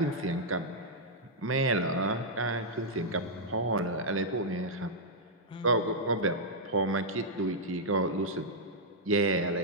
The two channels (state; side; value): normal; both; correlation -0.07